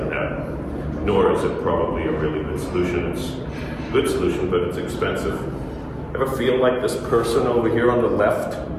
that. Nor is it probably a really good solution. It's a good solution, but it's expensive. Ever feel like this person over here on the left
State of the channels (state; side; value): identical; both; correlation 1.00